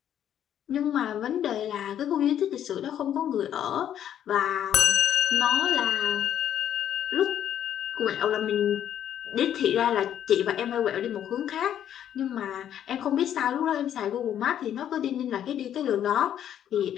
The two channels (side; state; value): right; quieter; 10.2 dB